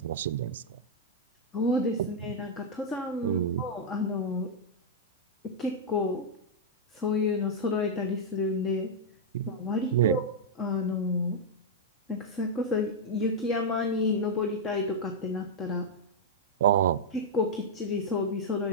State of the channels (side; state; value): both; normal; correlation -0.05